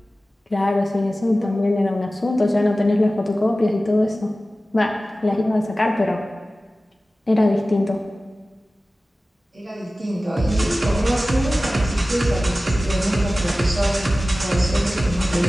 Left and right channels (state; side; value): normal; both; correlation 0.96